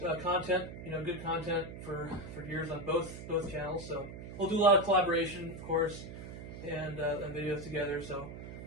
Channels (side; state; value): right; noise; hum, 11 dB below the sound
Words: content, good content for years on both channels. So we'll do a lot of collaboration, of course, and videos together. So